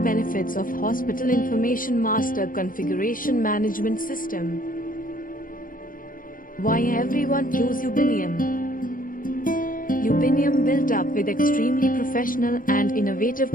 of Hospital Information Master Configuration Management System. Why everyone choose Ubinium? Ubinium, built up with extremely professional and innovative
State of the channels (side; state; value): right; late; 0.40 ms